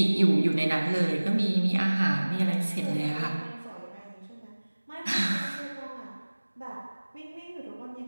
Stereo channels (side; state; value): both; inverted; correlation -1.00